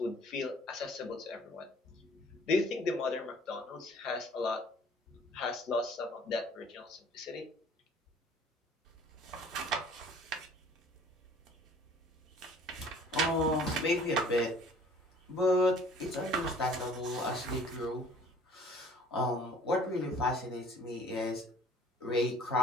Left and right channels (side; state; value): both; normal; correlation 0.52